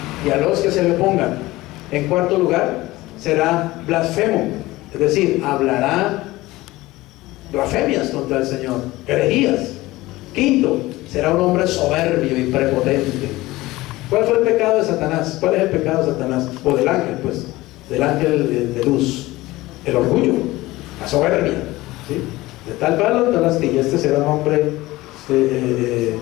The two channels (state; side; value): quieter; right; 18.8 dB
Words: y a los que se le pongan. En cuarto lugar, será blasfemo, es decir, hablará blasfemias contra el Señor, herejías. Quinto, será un hombre soberbio y prepotente. ¿Cuál fue el pecado de Satanás? ¿Cuál es el pecado de Satanás? O del ángel, pues, del ángel de luz. El orgullo, la soberbia, ¿sí? De tal palo, tal astilla. Este será un hombre